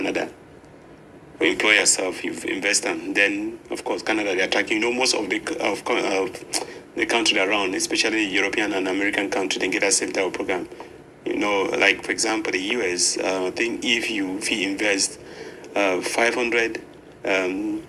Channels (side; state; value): both; identical; correlation 1.00